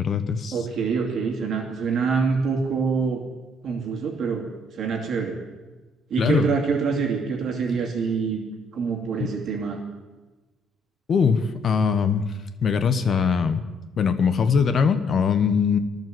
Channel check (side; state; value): both; normal; correlation 0.67